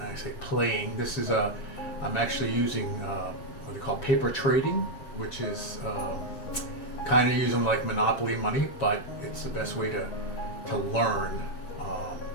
I say, playing. This is I'm actually using what they call paper trading, which is kind of using like monopoly money, but it's the best way to learn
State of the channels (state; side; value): late; right; 7.6 ms